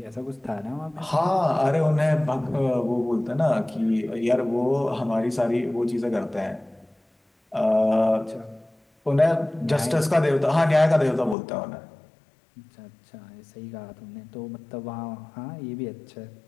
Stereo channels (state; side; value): drops out; right; at 11.4 s